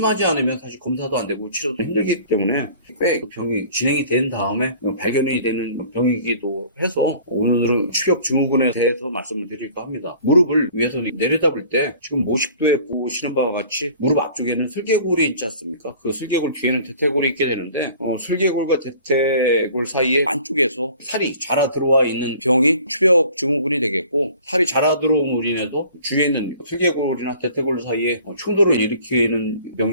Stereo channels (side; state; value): both; inverted; correlation -0.49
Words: 않으면 사실 검사도 안 되고 치료도 힘들기 때문에 꽤 병이 진행이 된 다음에 발견이 되는 병이기도 해서 오늘은 추벽증후군에 대해서 말씀을 드릴까 합니다. 무릎을 위에서 내려다볼 때 지금 모식도에 보시는 바와 같이 무릎 앞쪽에는 슬개골이 있지 않습니까? 그 슬개골 뒤에는 대퇴골이 있게 되는데 슬개골과 대퇴골 사이에 안쪽에서 살이 자라 들어와 있는 병이 추벽증후군이 되겠고, 살이 자라 들어옴으로 인해서 주위에 있는 슬개골이나 대퇴골 사이에 충돌을 일으키는